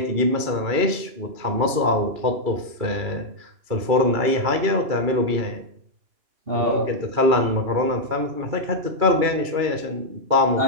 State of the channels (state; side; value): late; left; 2.3 ms